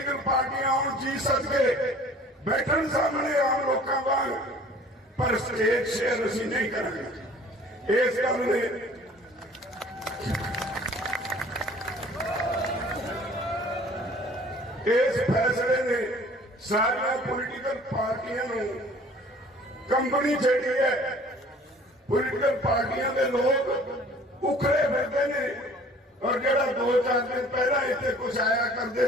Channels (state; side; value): normal; both; correlation 0.50